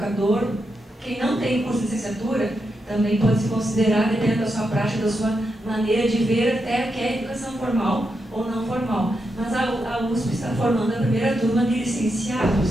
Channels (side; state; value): both; normal; correlation 0.85